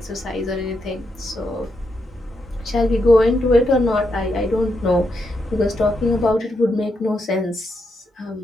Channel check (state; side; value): normal; both; correlation 0.82